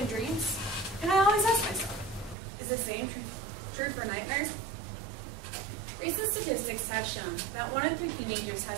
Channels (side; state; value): left; drops out; at 2.4 s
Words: dreams?" And I always ask myself, is the same true for nightmares? Recent statistics have shown that 1 in 3 teenagers